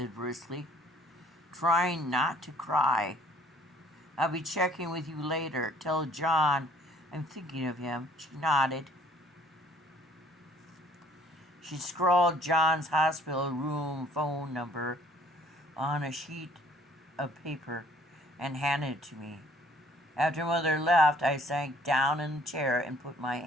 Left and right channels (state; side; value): normal; both; correlation 0.57